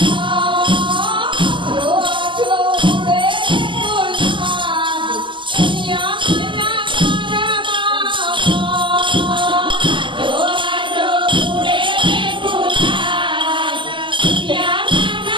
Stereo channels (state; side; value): late; left; 0.24 ms